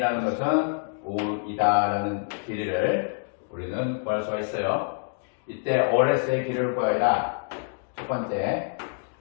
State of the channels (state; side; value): silent; right; digital silence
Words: 것은 5이다 라는 길이를 우리는 구할 수가 있어요. 이때 OS의 길이를 구하여라. 첫 번째